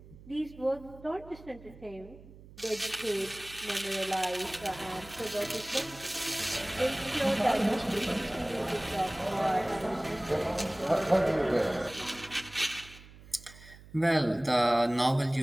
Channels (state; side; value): noise; right; hum, 20 dB below the sound